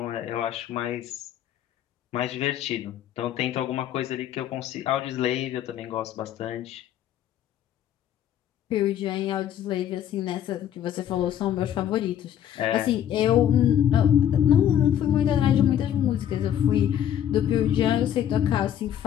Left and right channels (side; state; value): right; quieter; 10.4 dB